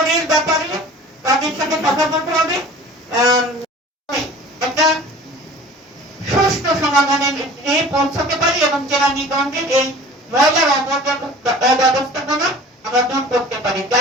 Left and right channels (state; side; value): normal; both; correlation 0.43